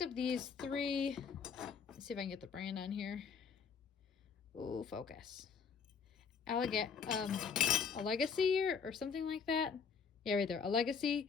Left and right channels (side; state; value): right; quieter; 6.1 dB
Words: up these 3, let's see if I can get the brand on here. Ooh, focus. A Legacy or something like that. Yeah, right there. A